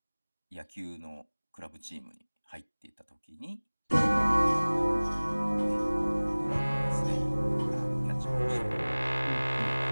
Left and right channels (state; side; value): inverted; both; correlation -1.00